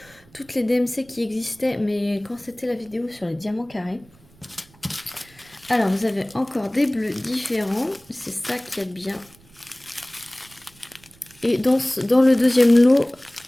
toutes les DMC qui existaient, mais quand c'était la vidéo sur les diamants carrés. Alors, vous avez encore des bleus différents. C'est ça qui est bien. Et dans le deuxième lot,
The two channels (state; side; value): noise; right; rumble, 27 dB below the sound